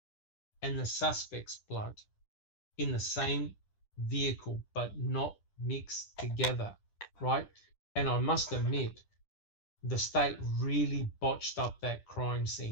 and the suspect's blood in the same vehicle, but not mixed together, right? And I must admit, the state really botched up that crime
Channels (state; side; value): late; right; 10 ms